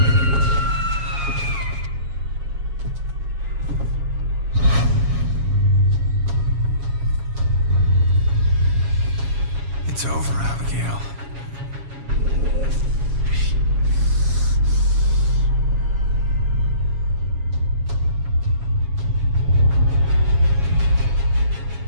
It's over, Abigail.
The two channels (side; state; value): left; late; 7.3 ms